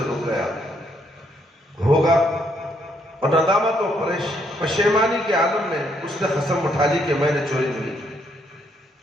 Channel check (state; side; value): normal; both; correlation 0.72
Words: رک گیا ہوگا اور ندامت و پشیمانی کے عالم میں اس نے قسم اٹھا لی کہ میں نے چوری نہیں کی.